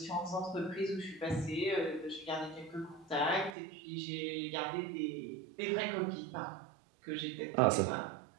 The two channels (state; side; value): drops out; left; at 3.6 s